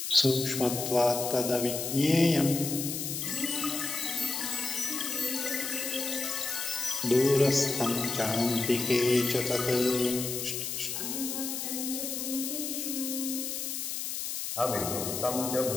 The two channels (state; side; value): noise; left; hiss, 4 dB below the sound